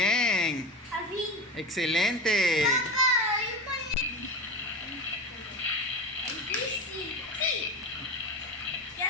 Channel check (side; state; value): both; normal; correlation 0.26